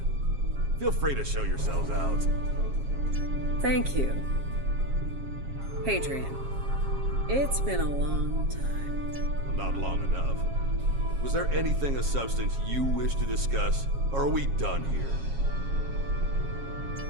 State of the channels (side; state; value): left; late; 7.4 ms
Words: Feel free to show yourselves out. Thank you. Hadrian, it's been a long time. Not long enough. Was there anything of substance you wish to discuss, or are we done here?